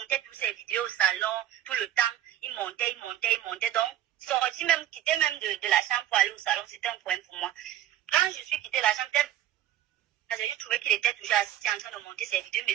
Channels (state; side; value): quieter; left; 11.9 dB